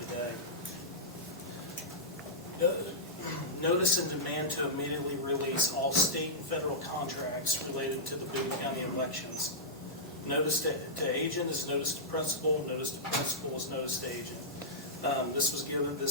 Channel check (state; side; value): normal; both; correlation -0.13